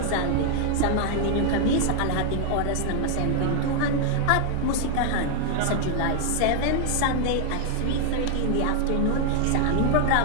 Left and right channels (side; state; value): both; different; correlation 0.00